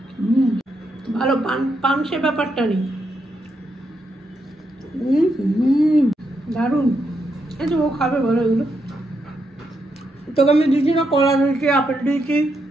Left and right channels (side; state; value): both; normal; correlation 0.81